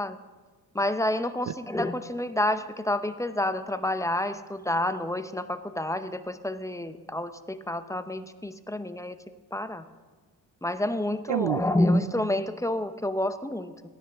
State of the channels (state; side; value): normal; both; correlation 0.71